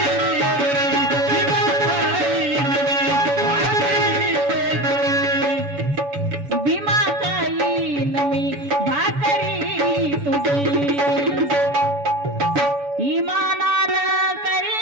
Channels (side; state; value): left; late; 7.0 ms